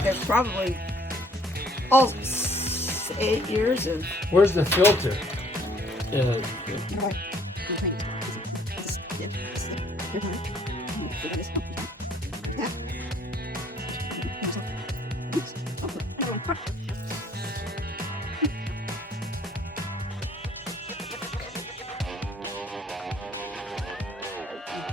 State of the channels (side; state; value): both; normal; correlation 0.61